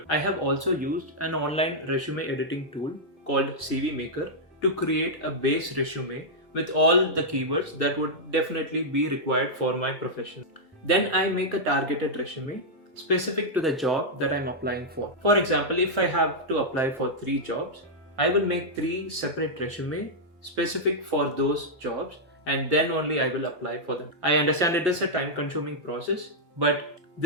I have also used an online resume editing tool called CV Maker to create a base resume with all the keywords that would definitely be required for my profession. Then I make a targeted resume specific to the job that I'm applying for. For example, if I have to apply for 3 jobs, I will make 3 separate resumes specific for those jobs and then only I will apply for them. I understand it is a time-consuming process, but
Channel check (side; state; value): both; normal; correlation -0.06